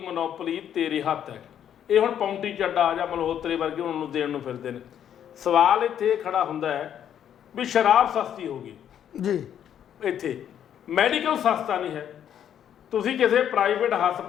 ਤੇਰੇ ਹੱਥ ਹੈ। ਇਹ ਹੁਣ ਪੌਂਟੀ ਚੱਡਾ ਜਾਂ ਮਲਹੋਤਰੇ ਵਰਗੇ ਉਹਨਾਂ ਨੂੰ ਦੇਣ ਨੂੰ ਫਿਰਦੇ ਨੇ। ਸਵਾਲ ਇੱਥੇ ਖੜਾ ਹੁੰਦਾ ਹੈ ਵੀ ਸ਼ਰਾਬ ਸਸਤੀ ਹੋ ਗਈ ਜੀ, ਇੱਥੇ ਮੈਡੀਕਲ ਸਸਤਾ ਨਹੀਂ ਹੈ। ਤੁਸੀਂ ਕਿਸੇ ਪ੍ਰਾਈਵੇਟ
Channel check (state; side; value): quieter; right; 9.6 dB